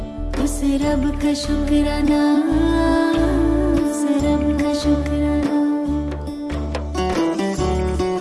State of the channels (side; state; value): both; identical; correlation 1.00